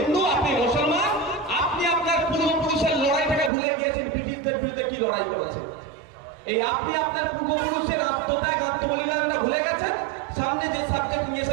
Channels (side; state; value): left; drops out; at 3.5 s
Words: আপনি মুসলমান, আপনি আপনার পূর্বপুরুষের লড়াই থেকে ভুলে গিয়েছেন। ব্রিটিশদের বিরুদ্ধে কি লড়াই করেছে, এই আপনি আপনার পূর্বপুরুষের আত্মত্যাগ, আত্মবলিদানটা ভুলে গেছেন। সামনে যে সাবজেক্ট নিয়ে